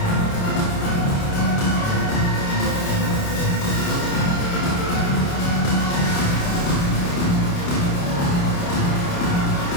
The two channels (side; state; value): right; late; 28 ms